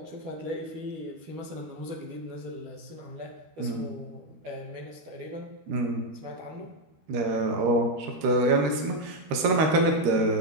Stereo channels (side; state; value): left; late; 13 ms